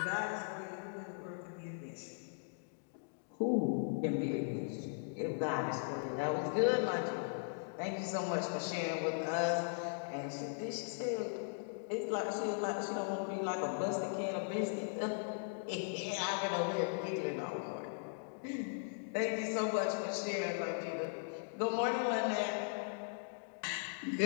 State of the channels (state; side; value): silent; right; digital silence